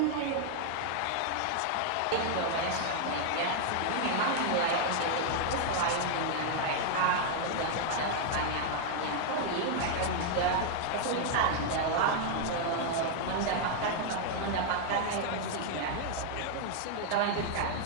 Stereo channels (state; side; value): different; both; correlation 0.00